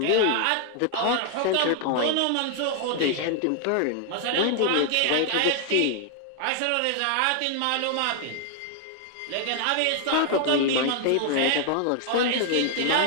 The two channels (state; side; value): different; both; correlation 0.00